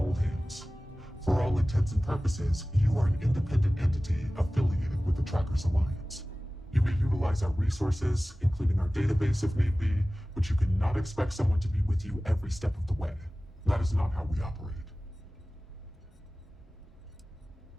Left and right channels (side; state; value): both; normal; correlation 0.97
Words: hands. For all intents and purposes, you are an independent entity affiliated with the Trackers Alliance. You may utilize our resources, including our database if need be, but you cannot expect someone to be with you every step of the way. That is not how we operate.